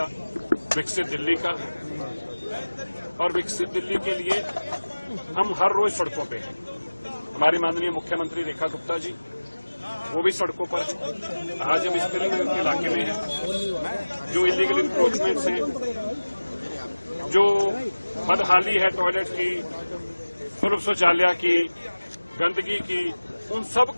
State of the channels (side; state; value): both; inverted; correlation -1.00